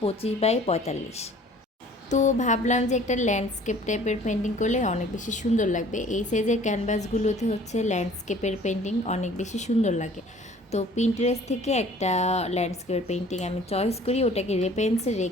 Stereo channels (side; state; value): both; normal; correlation 0.51